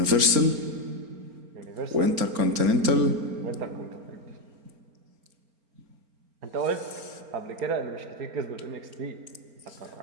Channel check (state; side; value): late; left; 4.4 ms